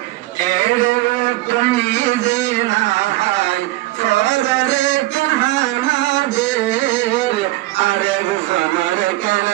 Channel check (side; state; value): left; quieter; 18.5 dB